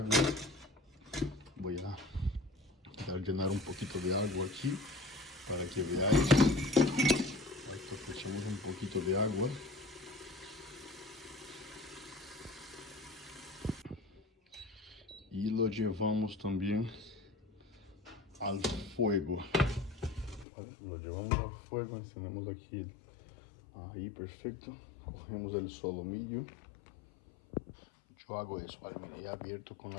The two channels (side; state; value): right; drops out; at 20.5 s